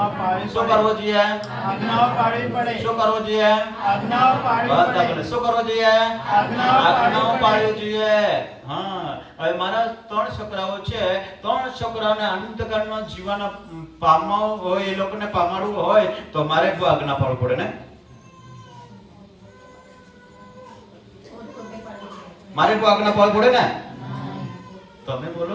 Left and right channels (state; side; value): identical; both; correlation 1.00